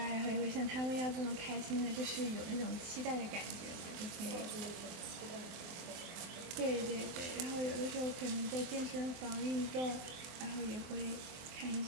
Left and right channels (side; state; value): left; late; 24 ms